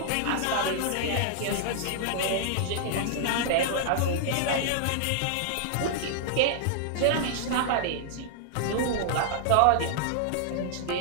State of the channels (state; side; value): different; both; correlation -0.01